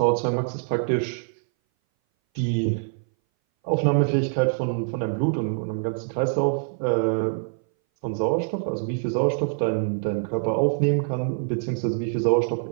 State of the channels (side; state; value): left; silent; 59 dB below the other